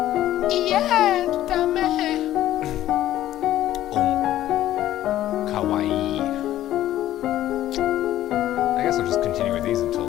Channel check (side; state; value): right; quieter; 13.3 dB